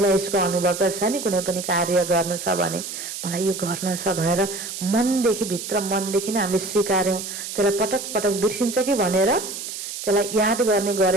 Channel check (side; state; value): right; noise; hiss, 8 dB below the sound